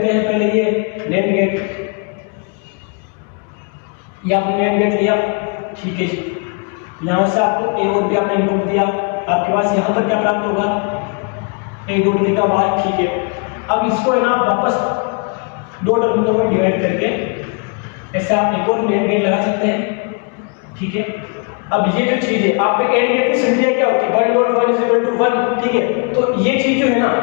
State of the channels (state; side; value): quieter; right; 36.0 dB